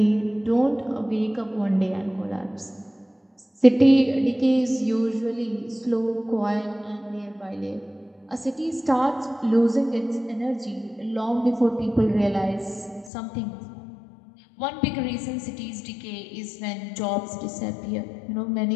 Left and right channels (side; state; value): right; drops out; at 13.1 s